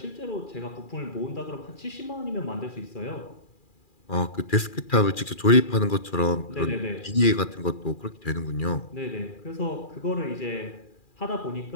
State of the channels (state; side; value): late; right; 2.4 ms